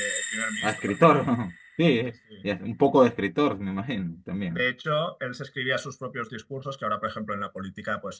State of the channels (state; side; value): identical; both; correlation 1.00